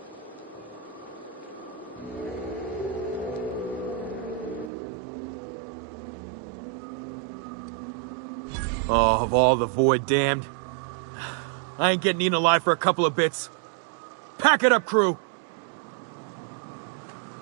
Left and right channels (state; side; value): drops out; left; at 4.7 s